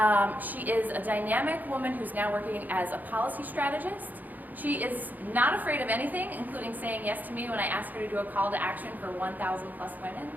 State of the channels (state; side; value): late; left; 0.083 ms